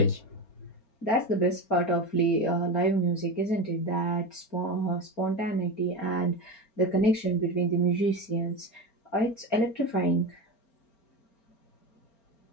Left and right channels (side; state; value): right; late; 4.4 ms